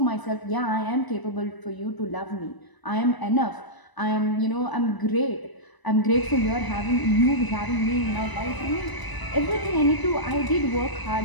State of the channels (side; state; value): right; late; 1.0 ms